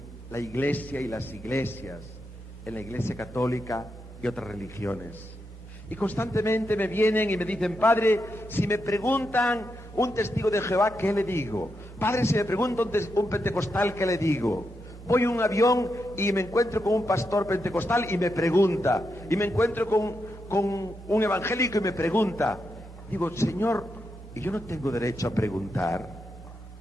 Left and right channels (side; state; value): both; normal; correlation 0.84